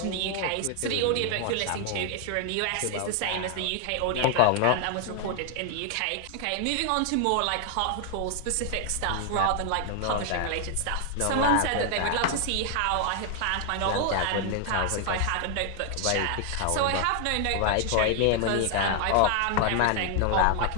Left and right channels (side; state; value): both; different; correlation 0.00